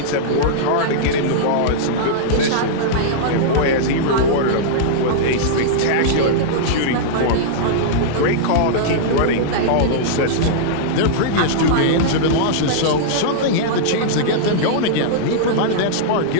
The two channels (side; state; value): both; different; correlation -0.02